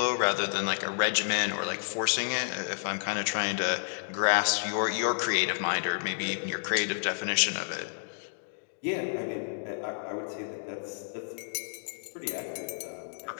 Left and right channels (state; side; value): silent; right; digital silence